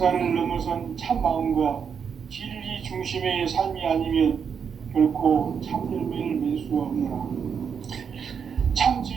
넘어선 참 마음과 진리 중심의 삶이 아니면 결코 참 열매를 맺을 수 없노라. 참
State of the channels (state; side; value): quieter; left; 6.8 dB